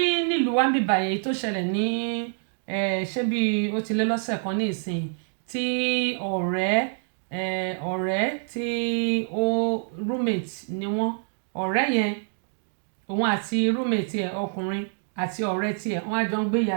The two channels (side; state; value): left; silent; digital silence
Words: nílùú wa ń bíbà yẹn tó ṣẹlẹ̀ ní ṣé bí ó ti lé lọ́sẹ̀ kan ní ìsìn tí ọ̀rẹ́ tí ó roommate ni wọ́n ọ̀rẹ́ yẹn òun àti roommate ẹ̀ ọkùnrin àti ọ̀rẹ́ tiẹ̀ wọ́n á jọ ń gbé